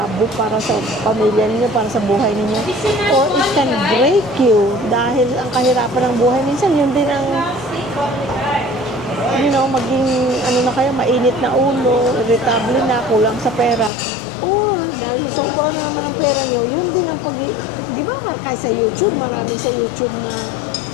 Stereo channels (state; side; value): drops out; right; at 13.9 s